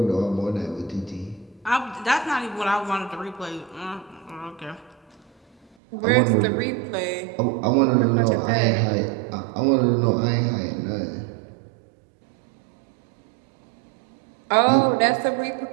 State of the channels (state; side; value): drops out; left; at 5.7 s